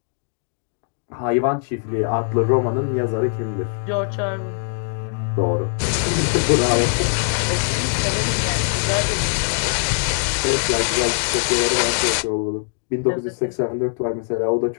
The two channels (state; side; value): silent; right; 65 dB below the other